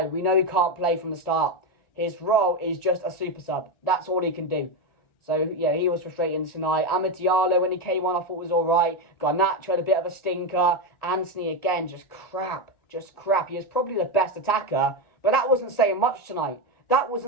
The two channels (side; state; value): right; late; 1.4 ms